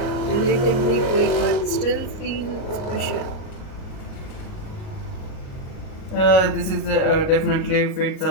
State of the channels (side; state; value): right; late; 38 ms